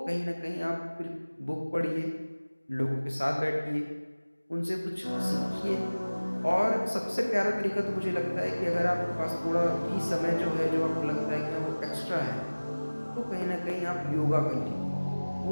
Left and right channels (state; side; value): inverted; both; correlation -1.00